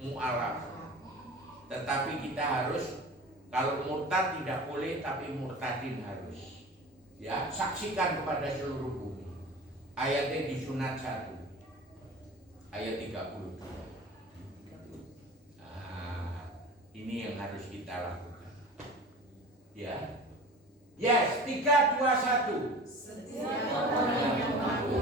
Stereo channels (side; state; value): both; normal; correlation 0.37